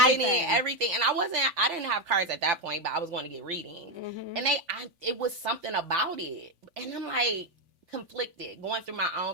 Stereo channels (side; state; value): left; late; 3.4 ms